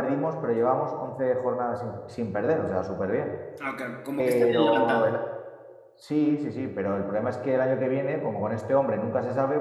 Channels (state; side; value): identical; both; correlation 1.00